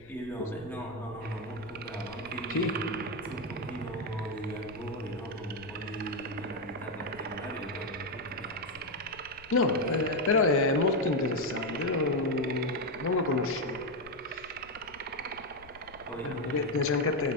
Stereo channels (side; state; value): left; noise; rumble, 22 dB below the sound